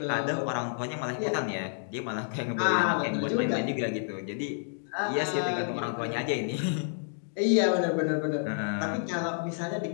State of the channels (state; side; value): silent; right; digital silence